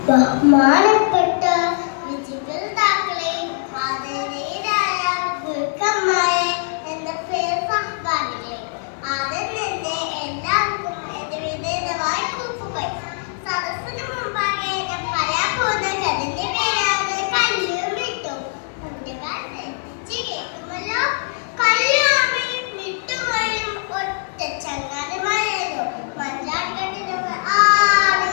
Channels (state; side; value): silent; right; digital silence